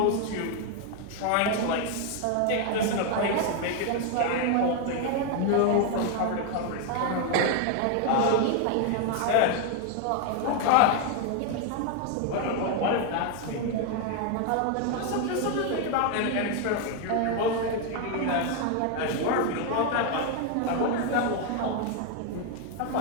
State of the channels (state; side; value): different; both; correlation 0.01